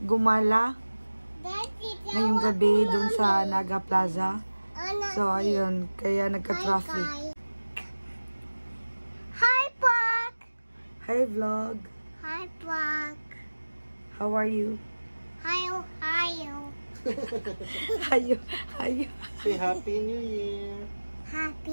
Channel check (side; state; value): both; inverted; correlation -1.00